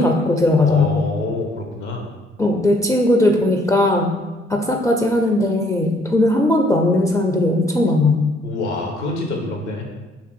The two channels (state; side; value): normal; both; correlation 0.65